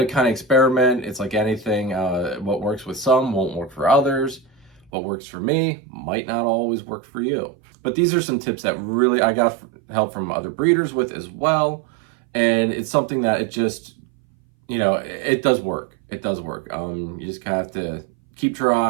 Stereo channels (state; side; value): drops out; left; at 4.9 s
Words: kind of experiment. It's like anything. What works with some won't work for others. What works for me might not always work for you. But these are some tips that really I got help from other breeders with as well. And it's something that it just, it does work. It does work. You just have to keep